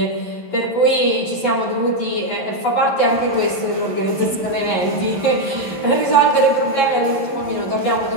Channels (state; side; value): late; right; 11 ms